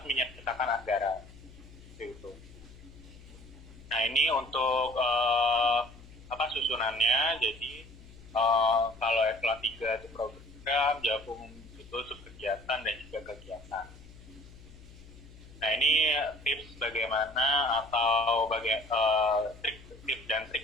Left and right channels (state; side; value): noise; left; hum, 20 dB below the sound